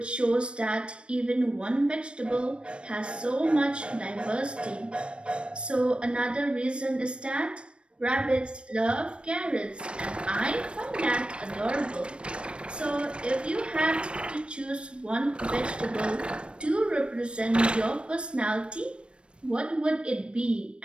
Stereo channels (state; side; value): late; left; 0.057 ms